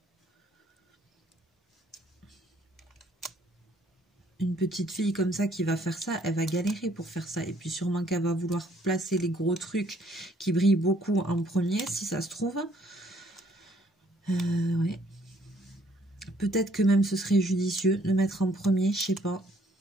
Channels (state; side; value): normal; both; correlation 0.64